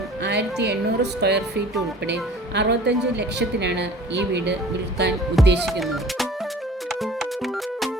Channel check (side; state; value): both; normal; correlation 0.45